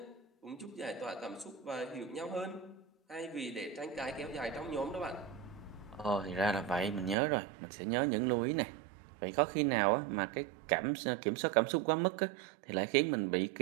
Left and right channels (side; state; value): left; drops out; at 7.2 s